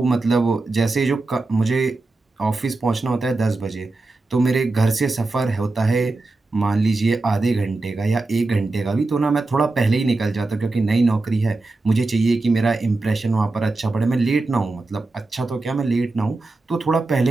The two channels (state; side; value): quieter; left; 3.2 dB